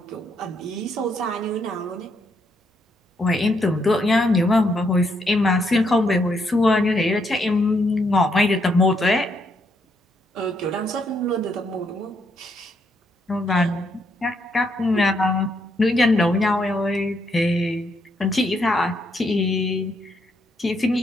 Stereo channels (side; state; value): both; normal; correlation 0.75